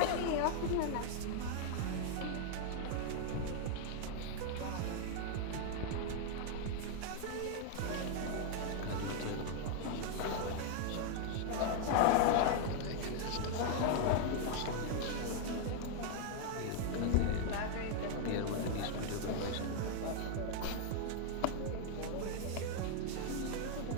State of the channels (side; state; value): both; different; correlation 0.00